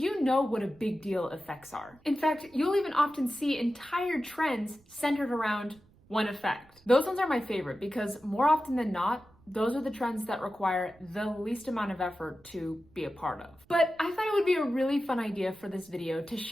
know what a big deal effects are. In fact, you'll even often see entire trends centered around one effect. Those ones are my favorite because more often than not, those are the trends that require the least amount of effort to be a part of. But I thought it would be a really fun idea for this video to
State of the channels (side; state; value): right; noise; rumble, 29 dB below the sound